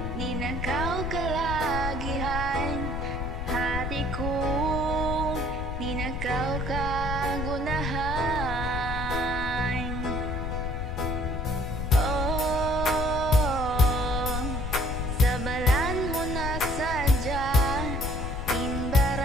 ninakaw kalagihan. Hati ko, ninakaw kagunahan. Oh, sa balan mo na sadya,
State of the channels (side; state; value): left; noise; rumble, 4 dB below the sound